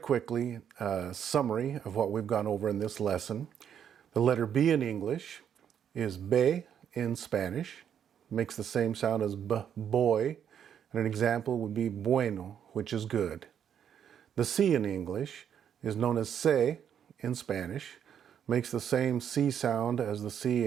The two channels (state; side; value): quieter; left; 8.8 dB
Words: a summary of what we've gone over in this lesson. The letter B in English is be in Spanish. Makes the same sound as b, boy. And an example would be bueno, which is good. The C in English is known as se in Spanish. Makes the same C sound as the C